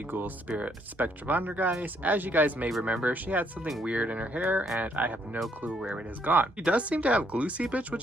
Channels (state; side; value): normal; both; correlation 0.70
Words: Ghoul Spirit Spectravondergeist. As you guys may remember, she had something weird in her hair, and I have no clue where it has gone. She does seem to have glue seepage,